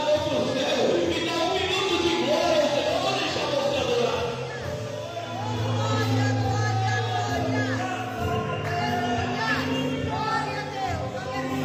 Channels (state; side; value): identical; both; correlation 1.00